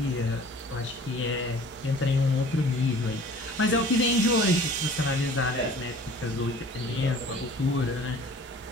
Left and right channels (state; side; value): normal; both; correlation 0.48